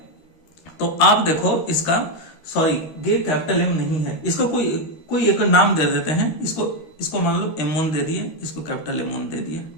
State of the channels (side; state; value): right; late; 13 ms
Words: तो आप देखो इसका, सॉरी ये कैपिटल M नहीं है, इसको कोई एक नाम दे देते हैं, इसको मान लो M1 दे दिए, इसको कैपिटल M1 दे दिए,